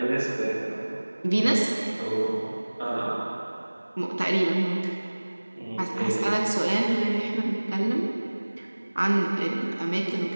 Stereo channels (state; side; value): inverted; both; correlation -1.00